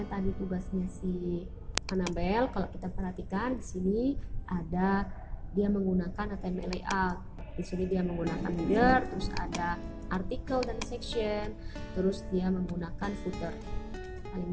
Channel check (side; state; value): both; identical; correlation 1.00